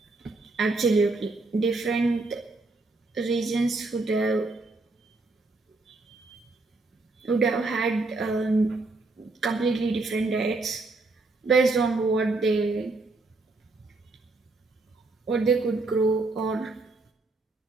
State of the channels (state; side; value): quieter; left; 3.4 dB